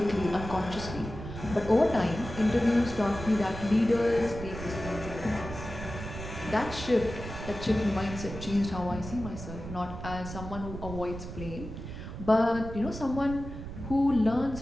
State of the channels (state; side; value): noise; right; rumble, 10 dB below the sound